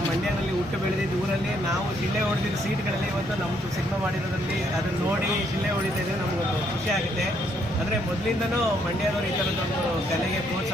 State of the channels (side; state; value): both; normal; correlation 0.71